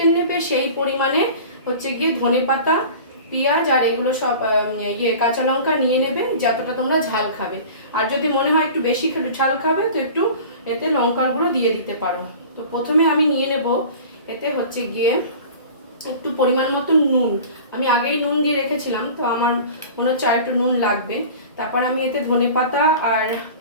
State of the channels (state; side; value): inverted; both; correlation -0.39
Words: নেবে সেই পরিমাণে হচ্ছে গিয়ে ধনেপাতা, পেঁয়াজ আর এগুলো সব কাঁচা লঙ্কা নিয়ে নেবে যতটা তোমরা ঝাল খাবে। আর যদি মনে হয় একটু বেশি ঝাল খাবে তো একটু এতে লঙ্কার গুঁড়ো দিয়ে দিতে পারো। তো প্রথমে আমি নিয়ে নেব এতে হচ্ছে গিয়ে একটু পরিমাণ মতো নুন। আমি আগেই নুন দিয়ে রেখেছিলাম, তো আমার মনে হচ্ছে আর একটু নুন লাগবে। তারপর আমি এতে ধনেপাতা আর